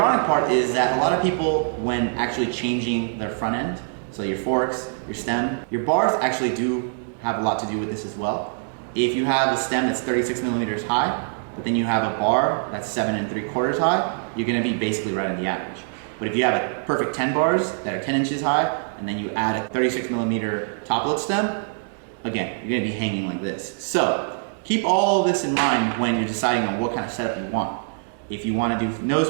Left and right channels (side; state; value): left; silent; digital silence